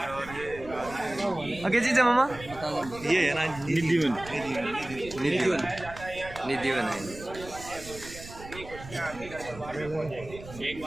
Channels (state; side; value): noise; right; rumble, 15 dB below the sound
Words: आगे जी मामा, ये है ना निधिवन, निधिवन, निधिवन है। एक